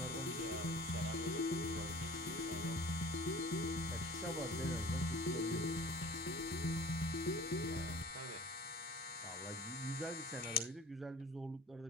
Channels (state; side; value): normal; both; correlation 0.45